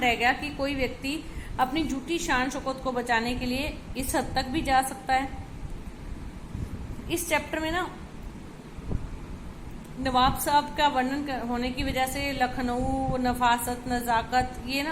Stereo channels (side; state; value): both; identical; correlation 1.00